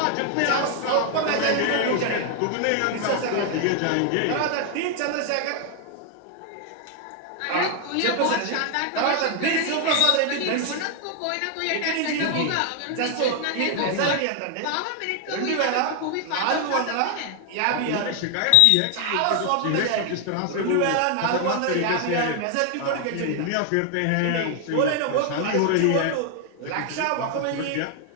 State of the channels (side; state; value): both; different; correlation 0.00